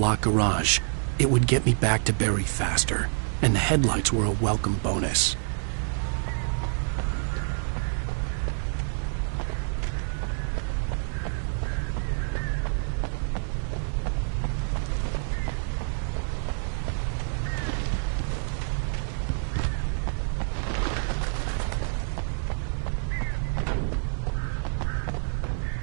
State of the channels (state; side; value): silent; left; 60 dB below the other